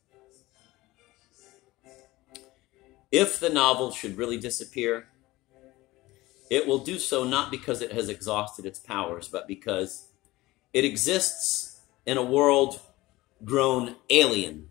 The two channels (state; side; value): quieter; right; 19.2 dB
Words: If the novel should really disappear, it will do so not because it has exhausted its powers, but because it exists in a world grown alien